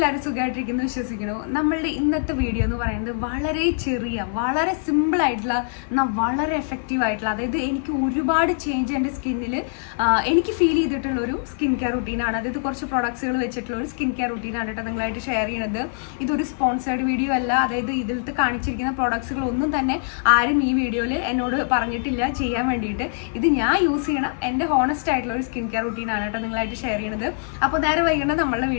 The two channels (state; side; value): silent; right; 55 dB below the other